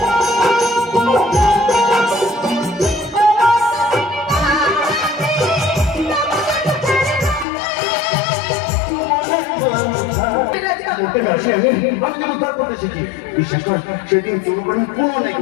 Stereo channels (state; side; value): drops out; right; at 7.5 s